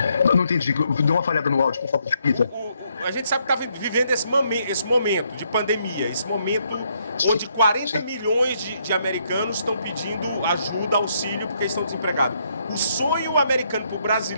Eu não entendi, deu uma falhada no áudio, por favor, repita. A gente sabe que está vivendo esse momento de pandemia, esse momento onde 40 milhões de americanos estão pedindo ajuda, auxílio, porque estão desempregados. O sonho americano para o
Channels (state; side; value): inverted; both; correlation -0.73